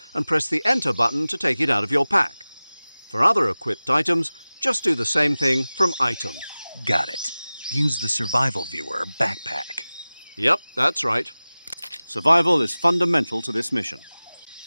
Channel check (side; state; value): both; inverted; correlation -0.98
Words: and press the Enter button to take it out of your pack. For other equipped items, just do the same thing from Item. Got it. Use the survival viewer backpack. Yep, that's right. Survival is fundamental to this mission.